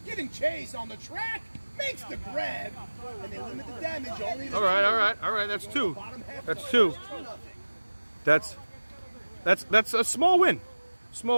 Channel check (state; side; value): inverted; both; correlation -1.00